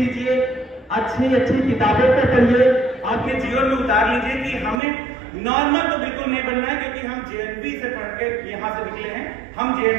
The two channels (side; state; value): left; drops out; at 4.8 s